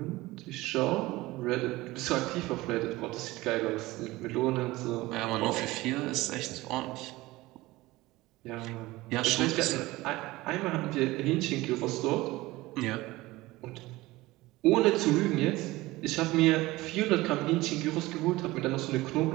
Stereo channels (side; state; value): left; quieter; 19.3 dB